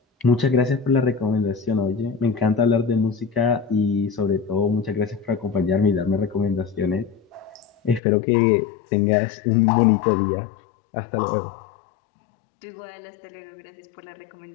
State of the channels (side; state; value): right; drops out; at 8.0 s